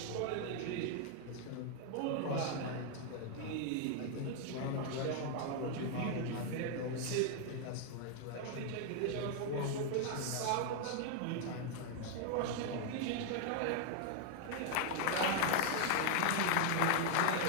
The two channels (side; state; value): both; different; correlation 0.00